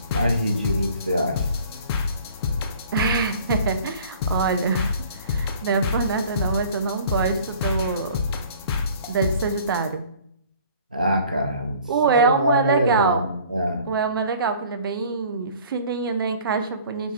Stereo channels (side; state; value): both; inverted; correlation -0.50